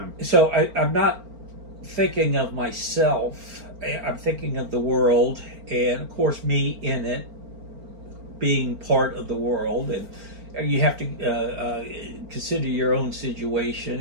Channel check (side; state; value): left; late; 4.4 ms